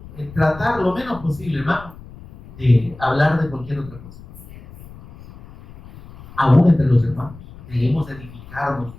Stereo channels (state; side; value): noise; left; rumble, 19 dB below the sound